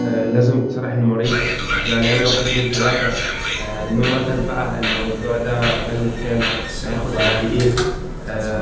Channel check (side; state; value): both; identical; correlation 1.00